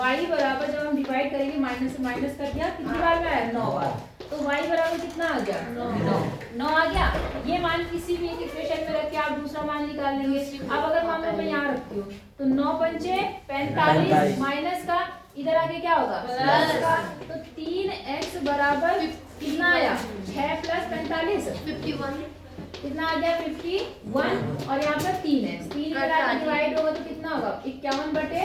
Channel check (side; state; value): both; identical; correlation 1.00